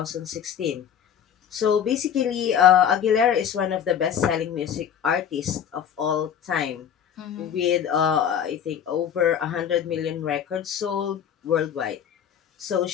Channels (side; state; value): right; quieter; 8.6 dB